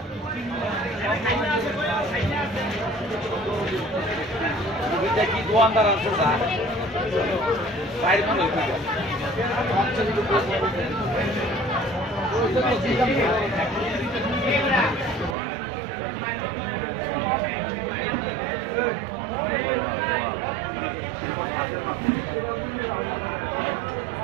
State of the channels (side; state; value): left; drops out; at 15.4 s